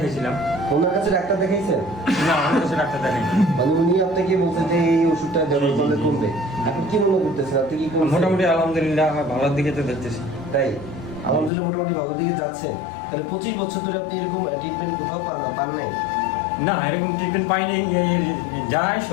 ওনার কাছে ডাক্তার দেখাইছেন? না, আমার কাছে ডাক্তার দেখাইনি। মানে উনি আপনাকে বলছেন যে এই ওষুধটা ব্যবহার করলে কমবে, আপনি কি মনে করতেছেন? আপনি কি মোটামুটি আলহামদুলিল্লাহ আমার ভালোর দিকে তো দেখতেছি। তাই আলহামদুলিল্লাহ মোটামুটি ভালোর দিকে যাচ্ছেন। তাহলে 25 বছর ধরে আপনি এরকম ট্রিটমেন্ট কোথাও পান নাই? না, এরকম ট্রিটমেন্ট পাইনি। যায়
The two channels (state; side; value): drops out; right; at 11.5 s